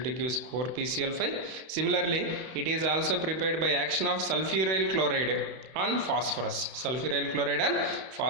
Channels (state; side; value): late; left; 31 ms